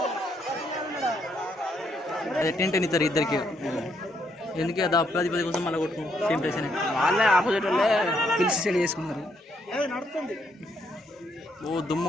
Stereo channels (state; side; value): normal; both; correlation 0.74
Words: అదే టెంట్ ఇస్తారు ఇద్దరికి. ఎందుకు అది 10 కోసం మళ్ళీ కొట్టుకు సేమ్ ప్లేస్ అని వాళ్ళే ఆపోజిట్ వాళ్ళే పిలిచి సెట్ చేసుకున్నారు. ఓ దుమ్ము